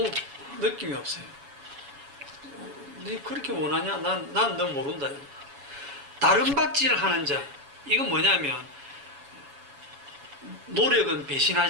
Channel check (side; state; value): left; late; 7.1 ms